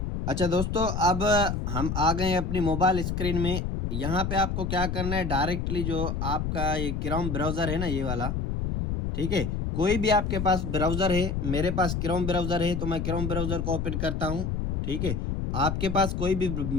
अच्छा दोस्तों, अब हम आ गए हैं अपनी मोबाइल स्क्रीन में। यहाँ पे आपको क्या करना है, डायरेक्टली जो आपका ये क्रोम ब्राउज़र है ना, ये वाला, ठीक है, कोई भी आपके पास ब्राउज़र है, मेरे पास क्रोम ब्राउज़र है तो मैं क्रोम ब्राउज़र को ओपन करता हूँ। ठीक है, आपके पास कोई भी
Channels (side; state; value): left; noise; rumble, 2 dB below the sound